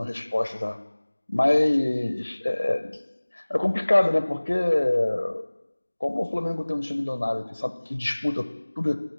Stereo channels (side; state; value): both; inverted; correlation -1.00